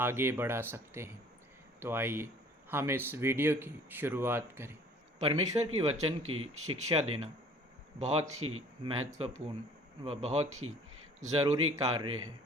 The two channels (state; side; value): normal; both; correlation 0.52